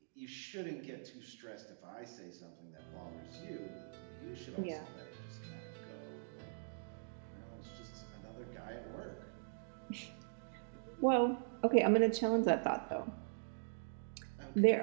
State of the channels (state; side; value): silent; left; digital silence